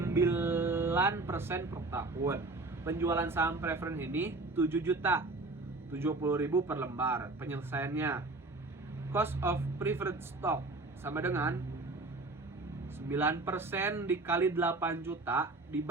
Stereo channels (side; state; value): left; quieter; 3.2 dB